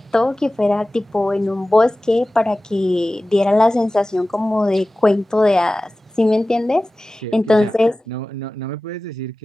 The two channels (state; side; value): normal; both; correlation 0.97